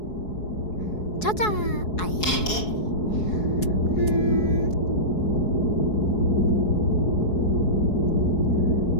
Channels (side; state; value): right; late; 4.7 ms